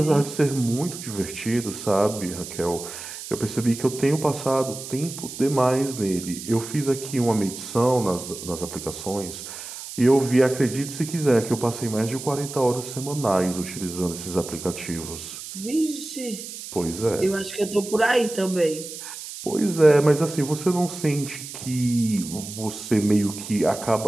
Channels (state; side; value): noise; right; hiss, 11 dB below the sound